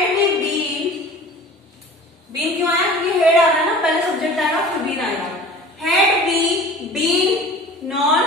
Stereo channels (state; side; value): normal; both; correlation 0.42